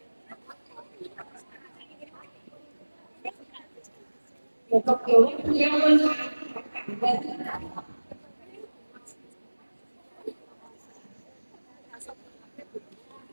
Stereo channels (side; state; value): both; inverted; correlation -1.00